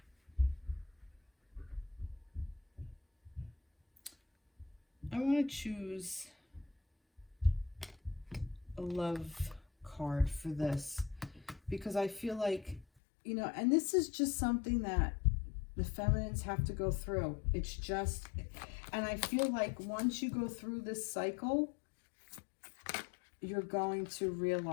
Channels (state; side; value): drops out; right; at 12.9 s